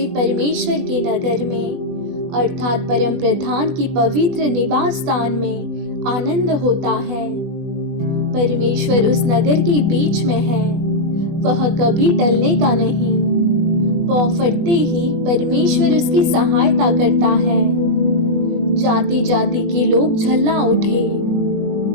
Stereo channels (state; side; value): late; left; 20 ms